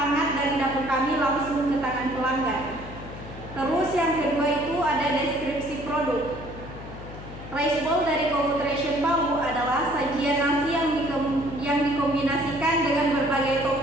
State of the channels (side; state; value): left; noise; hum, 13 dB below the sound